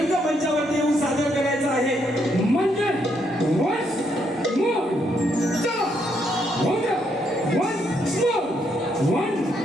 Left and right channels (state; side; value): normal; both; correlation 0.75